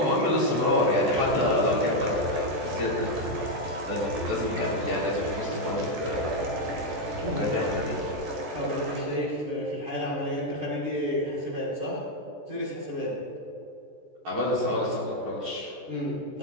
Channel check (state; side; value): late; left; 14 ms